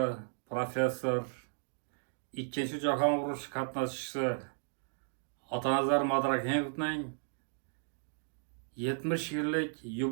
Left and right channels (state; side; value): silent; left; digital silence